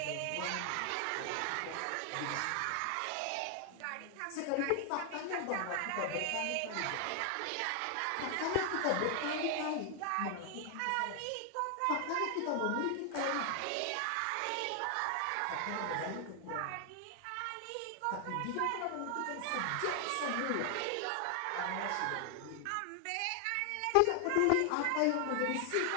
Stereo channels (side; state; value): both; different; correlation 0.00